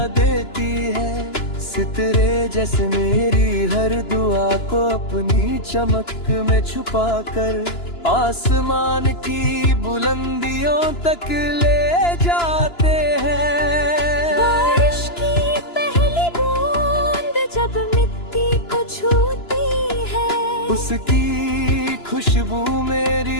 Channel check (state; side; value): late; right; 2.9 ms